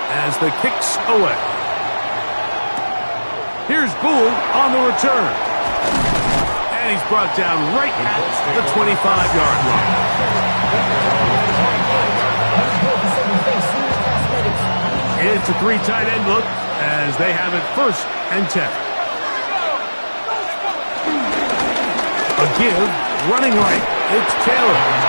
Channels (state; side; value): inverted; both; correlation -1.00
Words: as the kick's away. Here's Gould on the return. And he's brought down right at the 25-yard line. It's a 3 tight end look as they have it 1st and 10. A give, running right, it's Taylor.